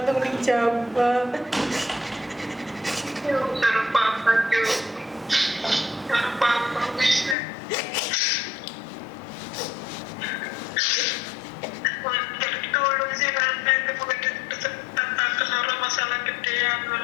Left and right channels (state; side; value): drops out; right; at 7.4 s